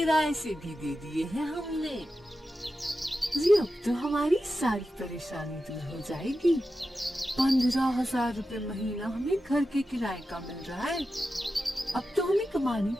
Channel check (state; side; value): normal; both; correlation 0.91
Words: से भी दे दिए हैं हमने। जी अब तो हमारी सारी परेशानी दूर हो जाएगी। 15,000 रुपए महीना हमें घर के किराए का मिल रहा है। अब तो हमें कमाने